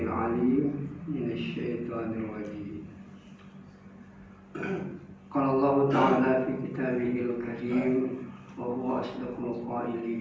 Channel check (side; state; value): both; identical; correlation 1.00